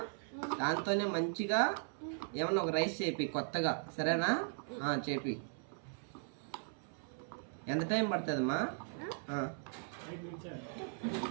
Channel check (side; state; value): left; silent; 52 dB below the other